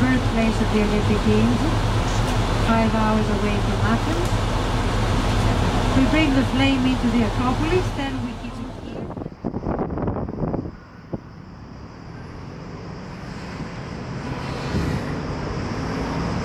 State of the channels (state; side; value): identical; both; correlation 1.00